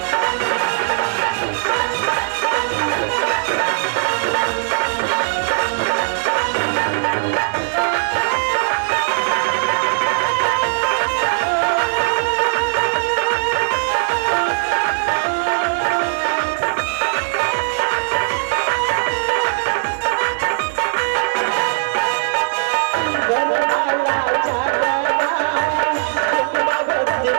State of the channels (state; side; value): silent; left; digital silence